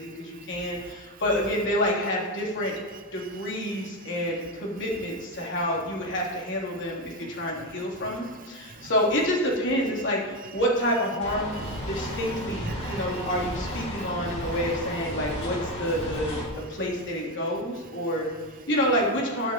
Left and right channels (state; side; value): normal; both; correlation 0.13